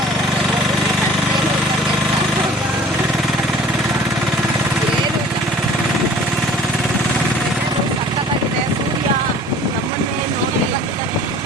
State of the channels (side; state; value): both; normal; correlation 0.49